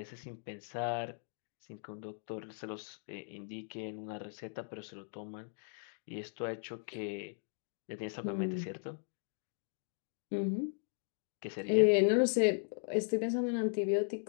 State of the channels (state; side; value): silent; right; digital silence